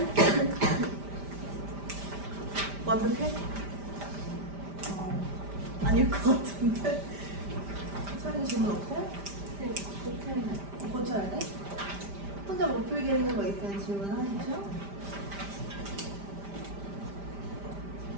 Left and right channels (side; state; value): left; late; 5.0 ms